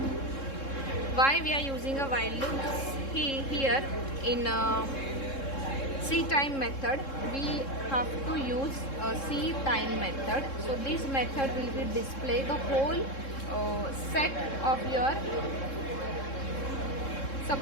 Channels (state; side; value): late; right; 3.7 ms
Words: Why we are using a while loop? Here in C time method we have to use a C time method. So this method will be display the whole set of your,